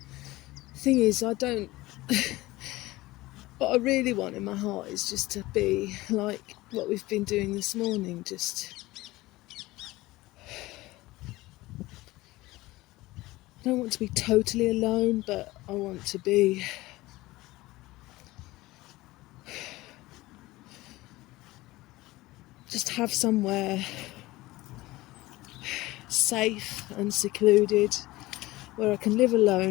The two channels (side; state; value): right; quieter; 19.1 dB